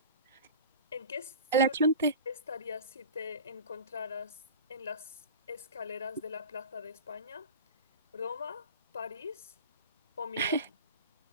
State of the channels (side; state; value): both; inverted; correlation -0.34